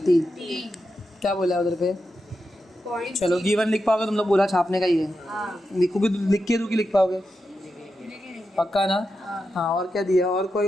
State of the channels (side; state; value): both; normal; correlation 0.88